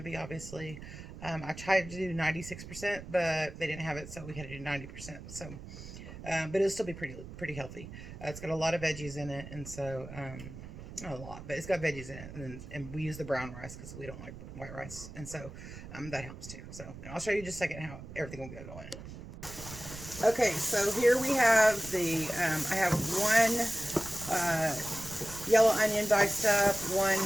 be. Obviously, I tried to do 96%, but they didn't have it, so we had to do 90%. So, but it'll still be pretty healthy. It's got a lot of veggies in it, and so. Not a lot, but it's got veggies in it, and we use the brown rice because we don't like white rice, and so that helps too. So, and I'll show you just a second how everything will go going. Okay, so here we have the I have one yellow onion diced up, one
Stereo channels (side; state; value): right; noise; rumble, 13 dB below the sound